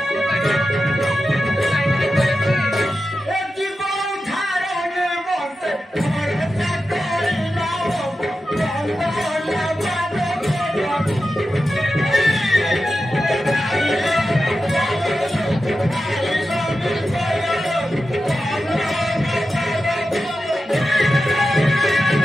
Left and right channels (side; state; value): both; normal; correlation 0.91